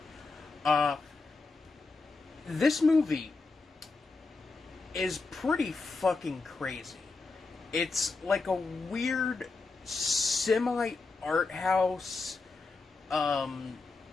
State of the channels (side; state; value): right; quieter; 3.9 dB